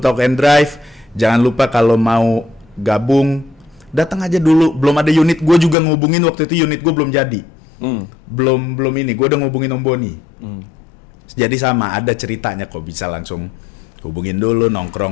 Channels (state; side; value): drops out; right; at 5.8 s